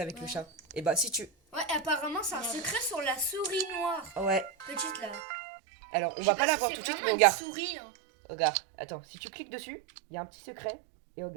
avec le chat? Et bah, si tu. Ouais, apparemment, c'est un secret sur la souris noire. Ouais. Petite là. Alors, on Je va sais pas la si voir c'est tout de suite, vraiment mais une regarde. souris. Hein. Regarde, attends, si tu cliques dessus, il y a un petit secret. Et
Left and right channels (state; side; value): drops out; left; at 5.2 s